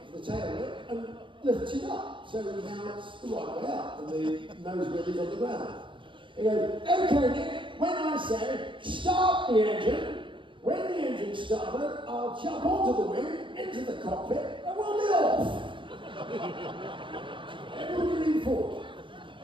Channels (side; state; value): left; late; 0.24 ms